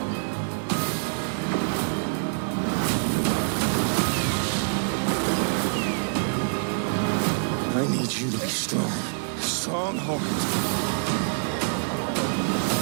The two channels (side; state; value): left; silent; digital silence